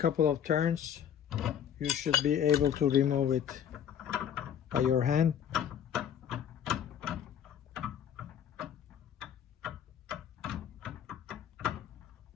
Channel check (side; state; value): right; quieter; 9.0 dB